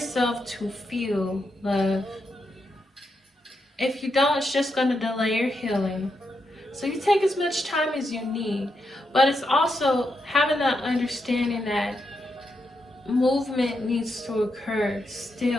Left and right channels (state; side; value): normal; both; correlation 0.83